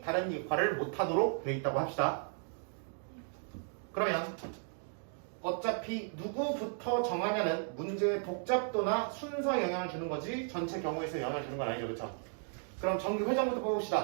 다른 역할을 못하도록 되어 있다고 합시다. 그러면 어차피 누구부터 정하냐는 문제의 복잡도나 순서에 영향을 주는 거지 전체 경우에 서 영향을 주는 건 아니죠, 그렇죠? 그럼 정규 회장부터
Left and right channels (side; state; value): left; silent; 54 dB below the other